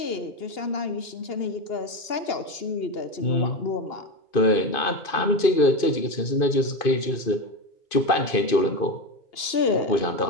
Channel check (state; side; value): late; right; 2.8 ms